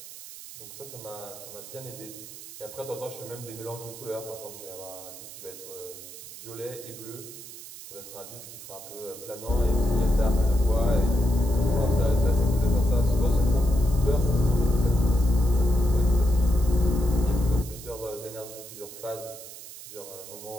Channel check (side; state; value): right; noise; hiss, 14 dB below the sound